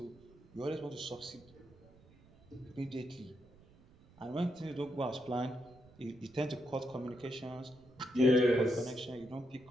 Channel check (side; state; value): right; noise; rumble, 25 dB below the sound